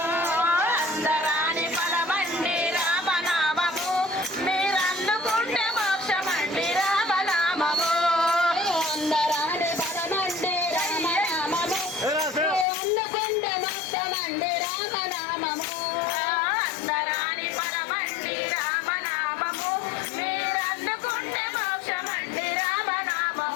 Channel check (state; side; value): drops out; right; at 12.7 s